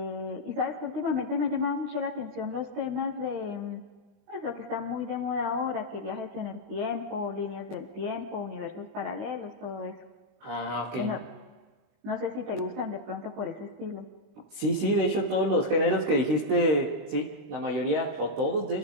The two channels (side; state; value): left; late; 20 ms